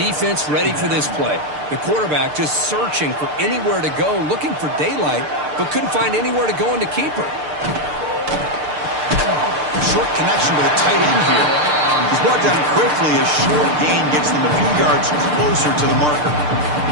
ready for this play. The quarterback just searching for anywhere to go, looking for daylight, but couldn't find anywhere to go into keeper. Short connection with a tight end here. He's brought down quickly as short gain gets them a few yards closer to the marker.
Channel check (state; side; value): late; left; 6.7 ms